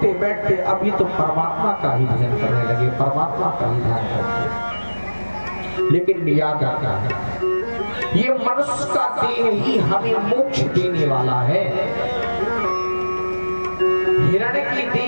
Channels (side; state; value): both; inverted; correlation -1.00